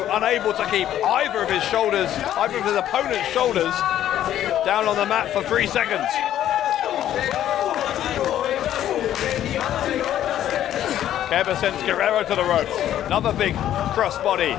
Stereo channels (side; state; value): right; quieter; 11.6 dB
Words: unable to keep either of his shoulders, either of his opponent's shoulders, down on the mat for 3 seconds. Kerber sends Guerrero to the ropes. Another big crossbody.